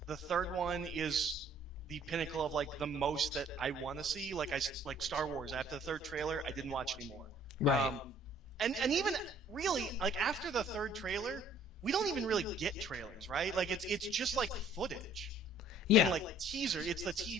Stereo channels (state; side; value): normal; both; correlation 0.57